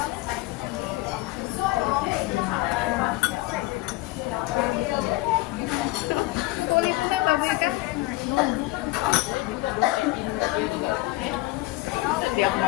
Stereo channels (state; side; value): quieter; right; 19.8 dB